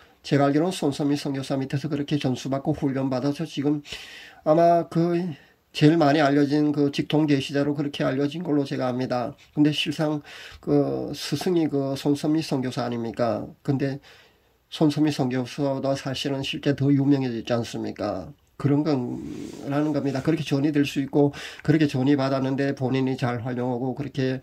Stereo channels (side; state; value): both; identical; correlation 1.00